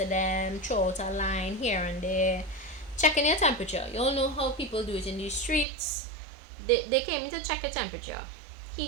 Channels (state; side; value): drops out; left; at 5.7 s